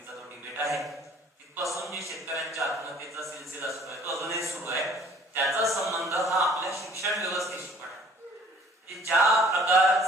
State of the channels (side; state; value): both; normal; correlation 0.54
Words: तो डिबेट आहे. तिथपासून जे शेतकऱ्यांच्या आत्महत्येचा सिलसिला सुरू आहे तो अजूनही सुरू आहे. त्याचा संबंध हा आपल्या शिक्षण व्यवस्थेशी पण आहे. ज्या